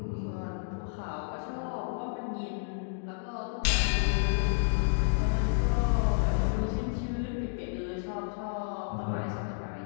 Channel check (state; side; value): silent; right; digital silence